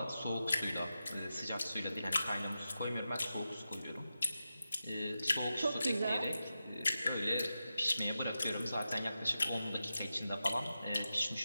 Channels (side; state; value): both; inverted; correlation -0.90